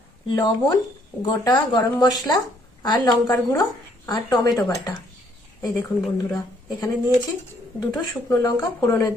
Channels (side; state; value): both; normal; correlation 0.67